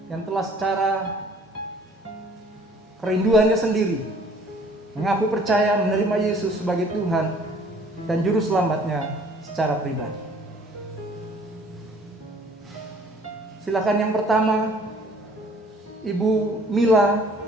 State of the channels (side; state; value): both; normal; correlation 0.55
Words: yang telah secara kerinduannya sendiri mengaku percaya menerima Yesus sebagai Tuhan dan Juru Selamatnya secara pribadi. Silakan yang pertama, Ibu Mila